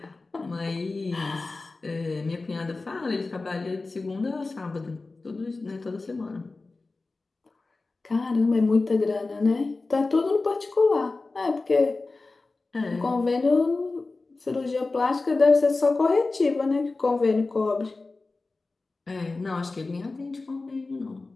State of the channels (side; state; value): right; quieter; 3.5 dB